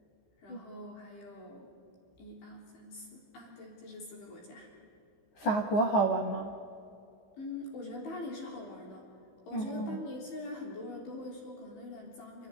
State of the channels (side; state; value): right; late; 15 ms